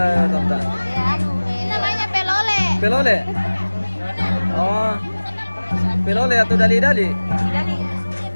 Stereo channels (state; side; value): inverted; both; correlation -1.00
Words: tante? Ini namanya pelole. Pelole? Oh, pelole atau dali-dali? Dali.